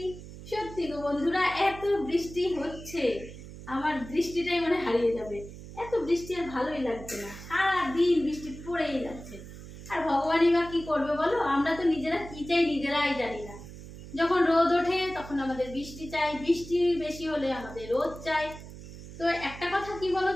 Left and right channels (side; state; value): right; noise; hum, 14 dB below the sound